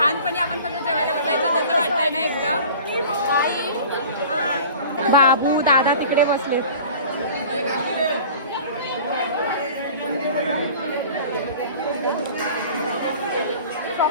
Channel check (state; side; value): inverted; both; correlation -0.42